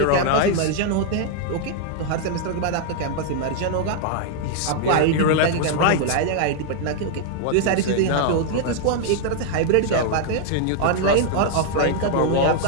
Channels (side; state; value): both; different; correlation 0.00